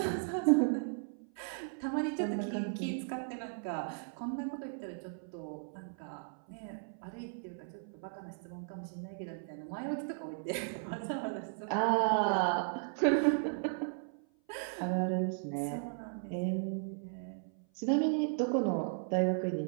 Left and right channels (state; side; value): silent; left; 54 dB below the other